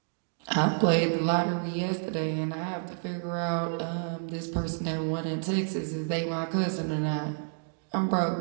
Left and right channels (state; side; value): silent; left; 58 dB below the other